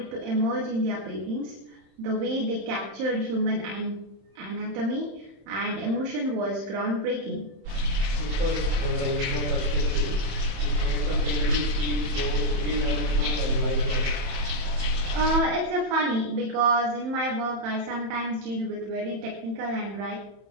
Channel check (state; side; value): late; left; 30 ms